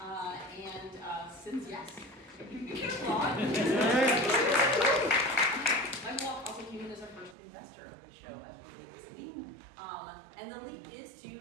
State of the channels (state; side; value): drops out; left; at 7.4 s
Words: and since my mom also came in as our first investor of the show as we did this week. And the lead is to